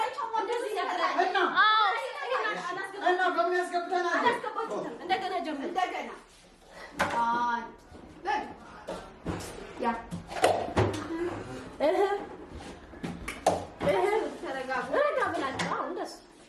እና በሚያስገብተናል አላስገባችሁትም። እንደገና ጀምሩ። እንደገና ያ ተረጋጉ። ረጋ ብላችሁ አሁን እንደሱ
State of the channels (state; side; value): identical; both; correlation 1.00